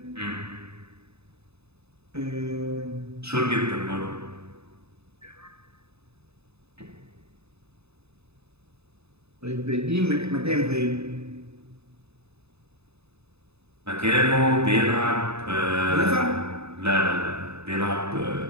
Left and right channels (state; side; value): late; left; 0.79 ms